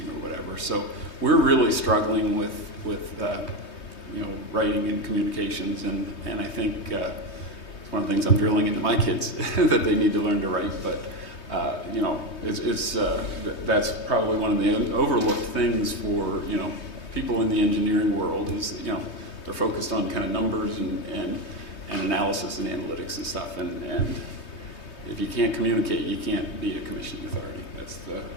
whatever. So we're really struggling with writing and communications, and I think it's one of the things I'm drilling into my kids that they need to learn to write. But that's probably one of the overlooked things for people in the engineering world is they're focused on kind of numbers and analysis and analytics and stuff, and if you can't communicate, you can't be a commissioning authority. That's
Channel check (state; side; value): late; right; 3.2 ms